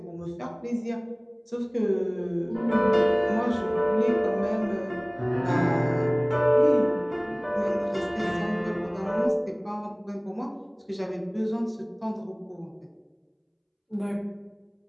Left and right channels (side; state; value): both; identical; correlation 1.00